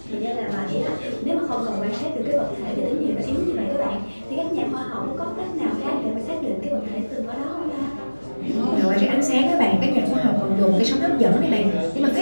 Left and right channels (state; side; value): inverted; both; correlation -1.00